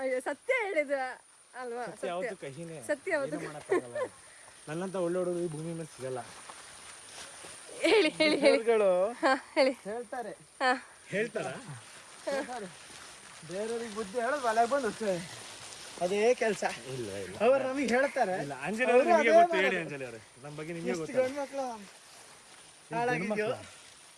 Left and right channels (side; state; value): both; identical; correlation 1.00